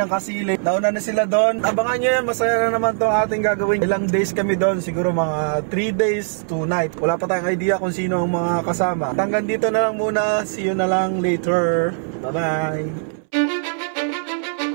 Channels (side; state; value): left; silent; 65 dB below the other